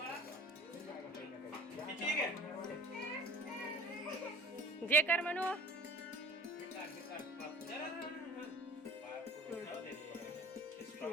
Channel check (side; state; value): both; normal; correlation 0.44